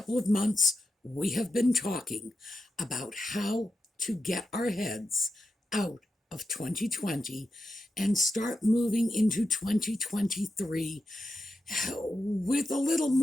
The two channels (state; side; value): normal; both; correlation 0.87